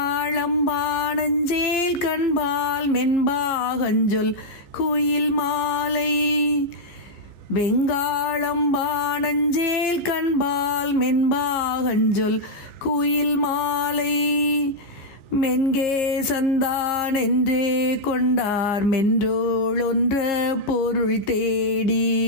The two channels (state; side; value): late; right; 15 ms